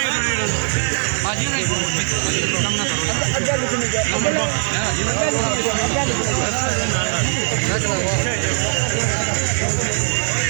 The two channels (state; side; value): silent; left; digital silence